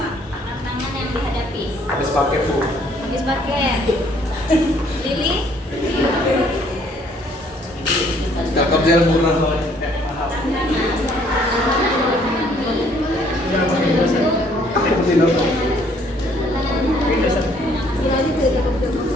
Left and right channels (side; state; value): both; normal; correlation 0.63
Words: tantangan yang dihadapi? Habis pakai Bu. Habis pakai. Lili, Kakak gel murah soalnya.